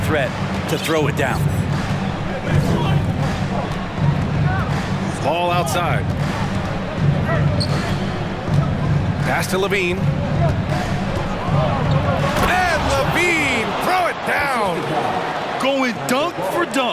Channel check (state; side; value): identical; both; correlation 1.00